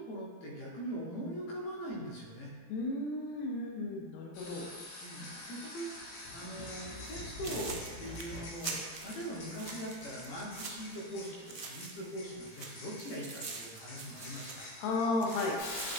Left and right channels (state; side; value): late; right; 18 ms